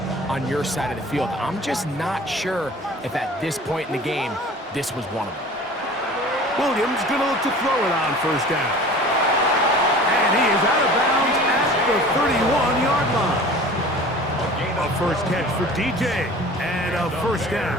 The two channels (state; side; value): normal; both; correlation 0.42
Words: on your side of the field. I'm just not sure if at this point in the game, this was one of them. Williams going to look to throw it on first down. And he is out of bounds at the 31-yard line. A first catch for DJ and a first